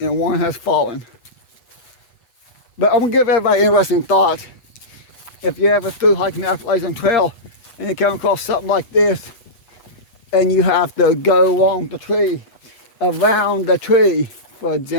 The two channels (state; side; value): late; right; 8.1 ms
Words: And one has fallen. But I'm gonna give everybody an interesting thought. If you ever through hiking the Appalachian Trail and you come across something like this, and you have to go along the tree, around the tree, for